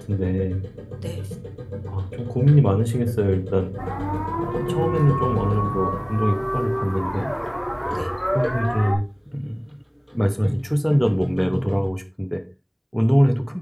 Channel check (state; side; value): identical; both; correlation 1.00